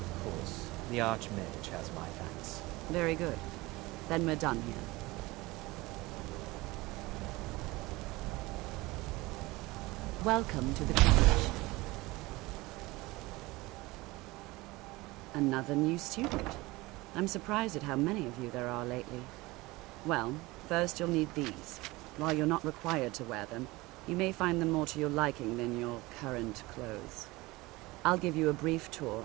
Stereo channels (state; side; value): quieter; left; 21.3 dB